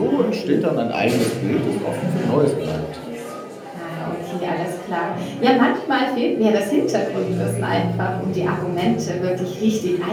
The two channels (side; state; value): both; identical; correlation 1.00